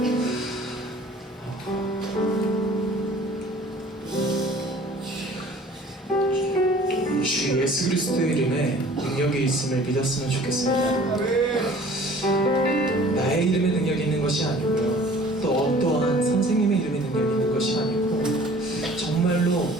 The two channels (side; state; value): both; normal; correlation 0.49